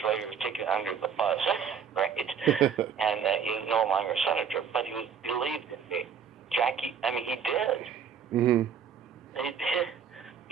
later, he was taken under the bus, right? And he's no longer a senator, but he believed in me. Jackie, he did. Mm-hmm. He did.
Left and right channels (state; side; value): quieter; left; 7.1 dB